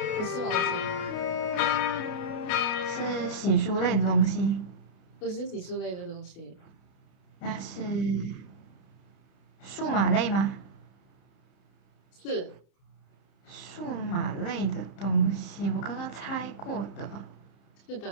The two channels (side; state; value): right; late; 31 ms